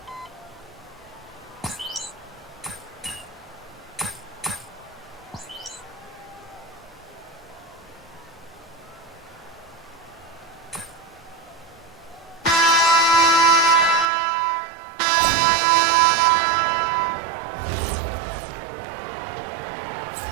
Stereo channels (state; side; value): drops out; left; at 14.1 s